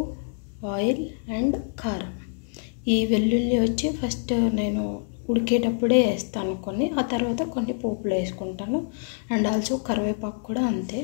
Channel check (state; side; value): silent; right; digital silence